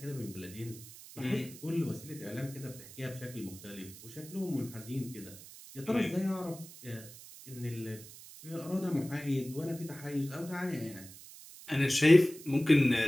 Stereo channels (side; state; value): right; noise; hiss, 17 dB below the sound